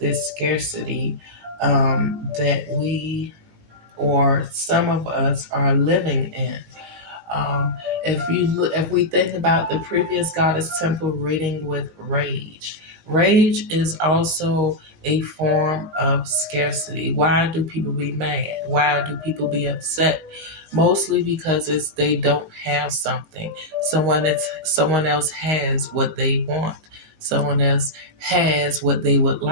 scarcity that we, or some of us, are living in. If we think about the previous Goddess Temple reading with rage, rage is also a form of scarcity. Why do people be mad? Why do people be upset? mostly because they don't have something. Someone else has what they want. Someone else has what they would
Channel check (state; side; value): late; left; 18 ms